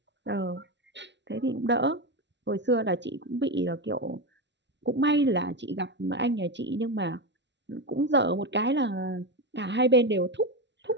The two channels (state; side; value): late; left; 0.51 ms